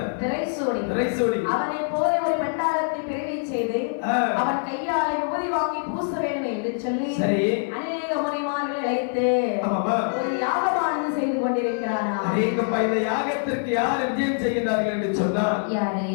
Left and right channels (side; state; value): right; silent; 59 dB below the other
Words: திரைசூடி அவனை போல ஒரு பண்டாரத்தை பிறவி செய்து அவன் கையாலை உபதி வாங்கி பூச வேண்டும் என்று சொல்லி அநேக மணிமார்களை அழைத்து ஒரு யாகமானது செய்து கொண்டிருக்கிறானா. இந்த யாகத்திற்கு யார் விஜயம் செய்கிறார்கள் என்று சொன்னார்